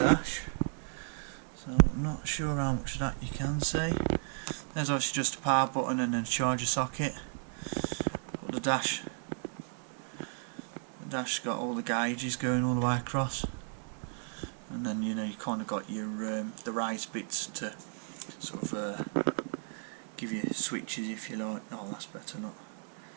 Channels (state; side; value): silent; left; 55 dB below the other